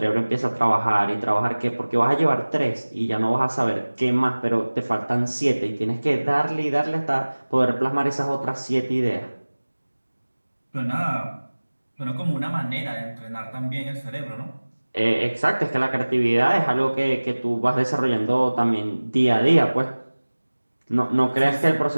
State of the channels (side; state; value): both; inverted; correlation -1.00